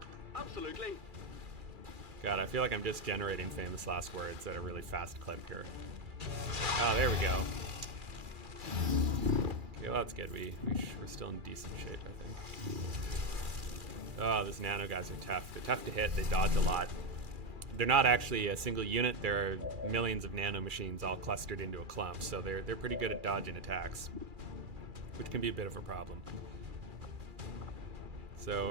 Absolutely. God, I feel like I'm just generating famous last words at a really fast clip here. Oh, there we go. Okay, well, that's good. We're still in decent shape, I think. Oh, those nano guys are tough. They're tough to hit. They dodge a lot. They're not actually a single unit. There are millions of nano machines all clustered into a clump, so they're pretty good at dodging attacks, which can be a bit of a problem.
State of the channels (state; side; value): late; left; 2.4 ms